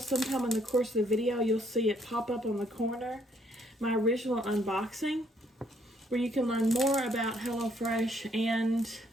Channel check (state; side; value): normal; both; correlation 0.68